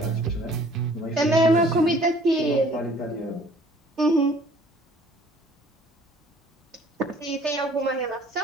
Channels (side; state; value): both; normal; correlation 0.54